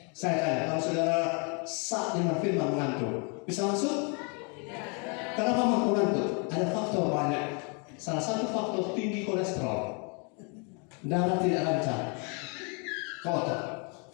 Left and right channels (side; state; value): right; quieter; 35.3 dB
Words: Saya tanya, kalau saudara saat dengan firman mengantuk, bisa masuk? Kenapa mengantuk? Ada faktor banyak. Salah satu faktor tinggi kolesterol, darah tidak lancar, kotor.